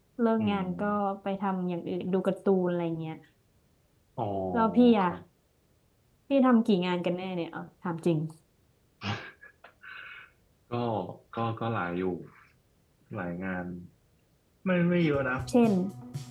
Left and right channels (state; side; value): identical; both; correlation 1.00